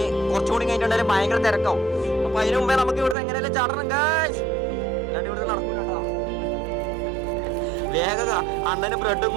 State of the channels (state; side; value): drops out; left; at 3.2 s